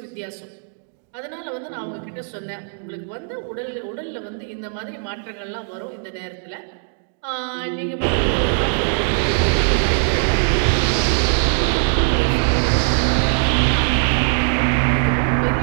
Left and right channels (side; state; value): left; silent; 65 dB below the other